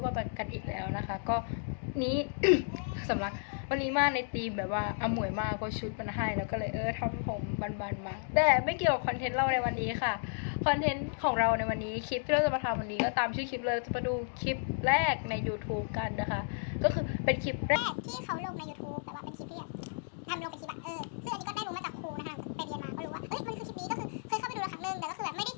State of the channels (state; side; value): silent; right; digital silence